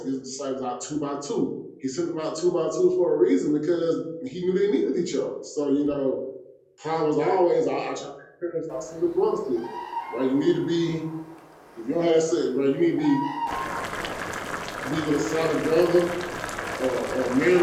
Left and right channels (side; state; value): both; identical; correlation 1.00